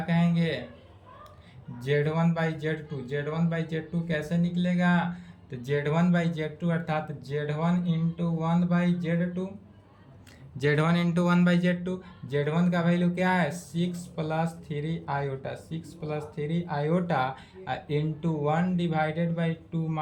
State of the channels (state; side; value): identical; both; correlation 1.00